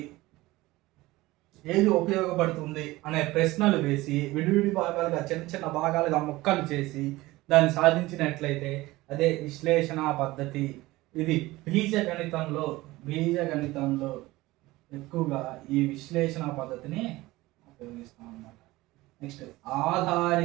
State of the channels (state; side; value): quieter; left; 19.2 dB